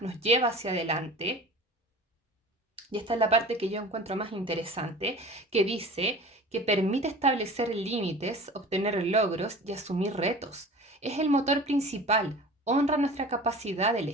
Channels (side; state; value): both; normal; correlation 0.40